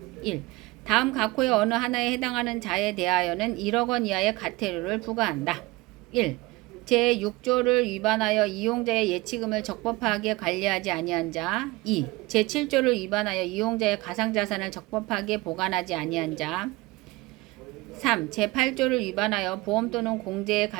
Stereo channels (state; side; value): quieter; left; 21.7 dB